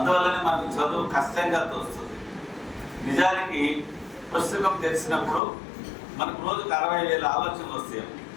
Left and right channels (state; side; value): drops out; right; at 5.4 s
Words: మనకు చదువు కష్టంగా తోస్తుంది. నిజానికి పుస్తకం తెలిసినప్పుడు మనకు రోజుకు 60,000 ఆలోచనలు వస్తాయి.